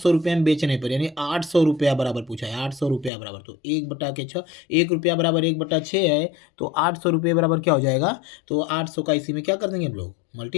रुपये में बेचने पर यानी 800 रुपया बराबर पूछा है, 800 रुपया बराबर। तो 1/6 1 रुपया बराबर 1/6 है, तो 800 रुपये बराबर क्या हो जाएगा? तो 800 का इसी में क्या कर देंगे हम लोग?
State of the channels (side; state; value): right; drops out; at 3.1 s